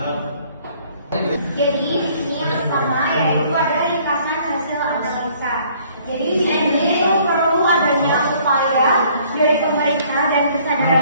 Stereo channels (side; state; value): both; inverted; correlation -0.59